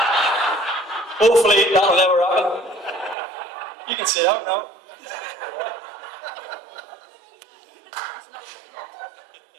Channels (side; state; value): left; drops out; at 3.2 s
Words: Hopefully that'll never happen. You can sit out now.